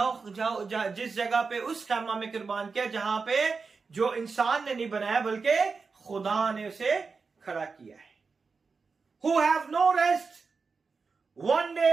जगह पे उस खैमा में कुर्बान किया जहां पे जो इंसान ने नहीं बनाया बल्कि खुदा ने उसे खड़ा किया है. Who have no rest. One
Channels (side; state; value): left; quieter; 4.7 dB